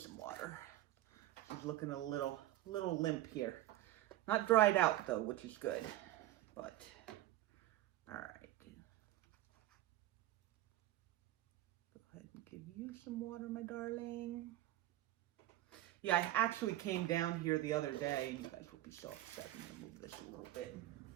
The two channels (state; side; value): quieter; left; 15.1 dB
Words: some water. She's looking a little limp here. Not dried out though, which is good, but all right. Go ahead and give you some water, my darling. Yeah, I actually came down here the other day, and you guys will be so upset. I'm gonna move this a little bit.